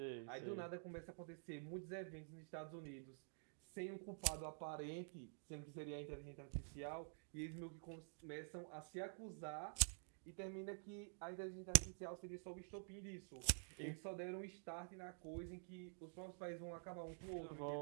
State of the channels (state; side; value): silent; left; digital silence